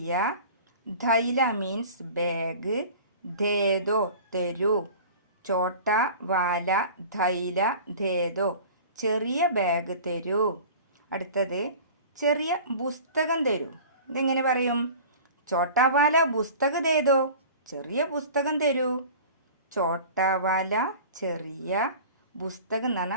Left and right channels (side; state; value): both; inverted; correlation -0.40